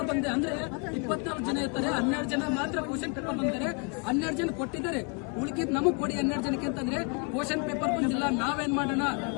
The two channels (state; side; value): quieter; right; 34.5 dB